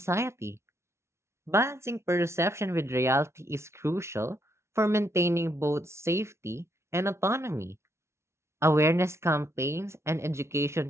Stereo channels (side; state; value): left; late; 0.13 ms